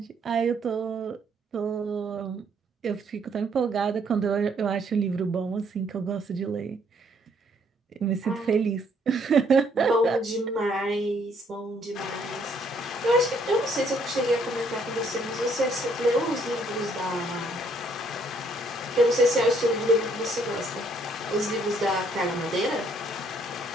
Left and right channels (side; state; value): both; normal; correlation 0.67